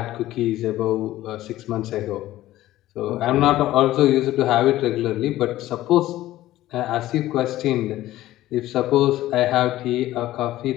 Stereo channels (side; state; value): right; quieter; 15.1 dB